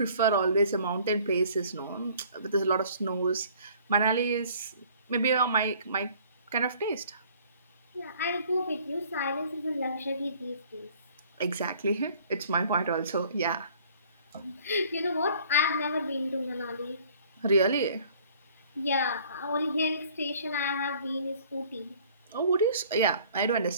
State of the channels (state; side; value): inverted; both; correlation -0.55